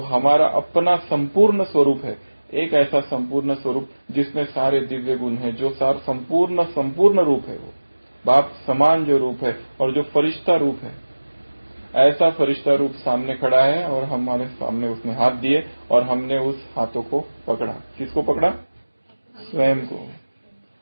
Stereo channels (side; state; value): both; inverted; correlation -1.00